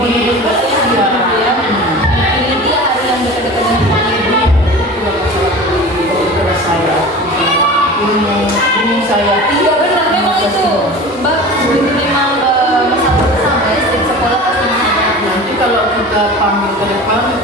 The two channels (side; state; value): both; normal; correlation 0.36